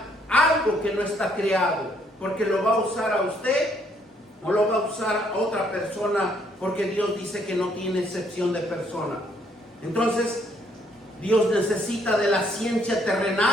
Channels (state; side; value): normal; both; correlation 0.68